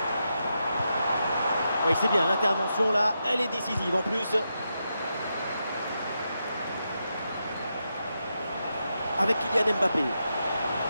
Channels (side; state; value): both; inverted; correlation -0.85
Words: Oui, c'est bien, l'intervention là, elle est décisive en plus. Avec Kylian Mbappé.